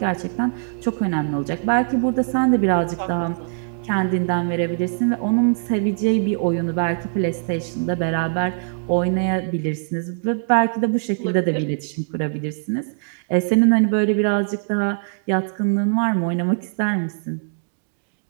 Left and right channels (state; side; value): silent; left; digital silence